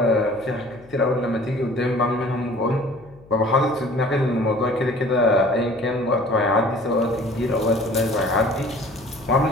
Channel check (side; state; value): left; noise; hum, 24 dB below the sound